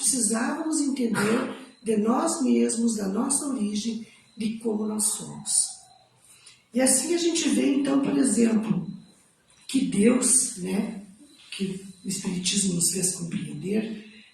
entender de nós mesmos, da nossa origem, de como nós somos. E assim a gente vê, então, por exemplo, que Deus, que o Espiritismo nos fez compreender,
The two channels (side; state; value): both; identical; correlation 1.00